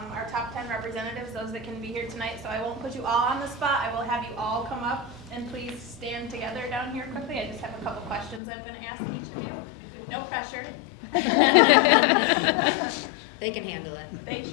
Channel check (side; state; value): right; drops out; at 8.4 s